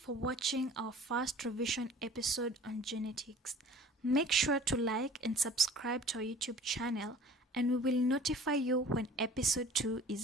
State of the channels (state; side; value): normal; both; correlation 0.47